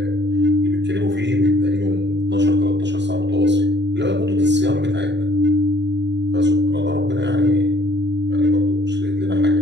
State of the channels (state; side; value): late; left; 0.51 ms